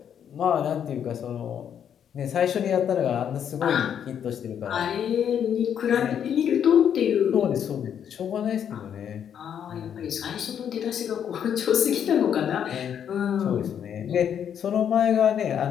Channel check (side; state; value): right; quieter; 8.7 dB